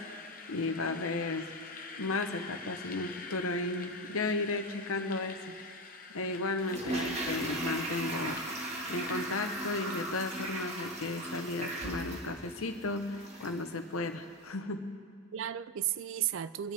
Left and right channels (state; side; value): normal; both; correlation 0.14